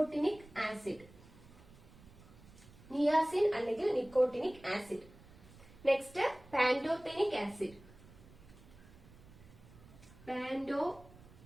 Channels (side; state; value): right; noise; rumble, 22 dB below the sound